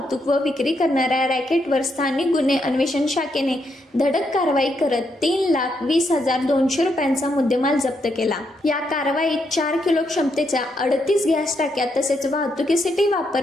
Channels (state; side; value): normal; both; correlation 0.79